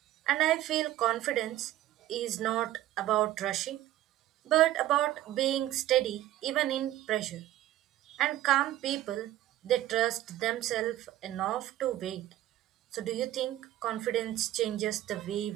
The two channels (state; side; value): quieter; left; 14.1 dB